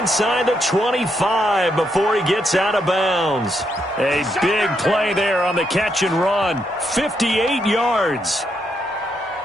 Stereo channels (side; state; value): both; normal; correlation 0.79